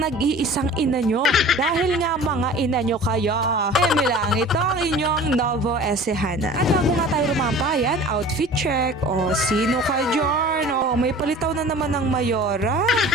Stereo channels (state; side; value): normal; both; correlation 0.42